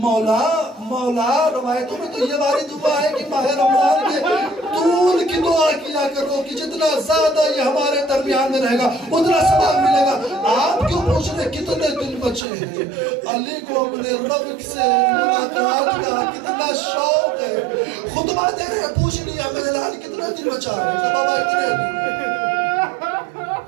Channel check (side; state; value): left; drops out; at 12.5 s